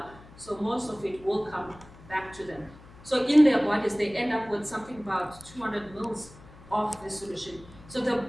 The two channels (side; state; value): left; noise; hum, 21 dB below the sound